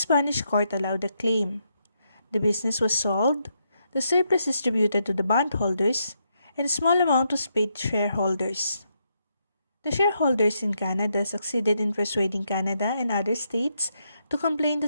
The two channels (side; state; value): both; inverted; correlation -0.79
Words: court allowed the claim. The business was sold, the surplus distributed to the bondholders, and a small amount was paid to shareholders. The shareholders in Canada succeeded in persuading Canada and other states to complain that